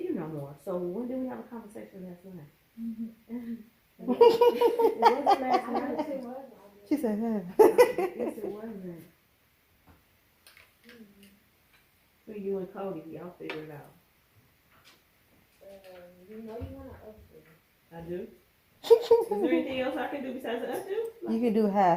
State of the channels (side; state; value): both; identical; correlation 1.00